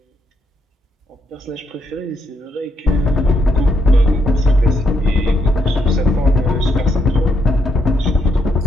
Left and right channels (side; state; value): both; normal; correlation 0.77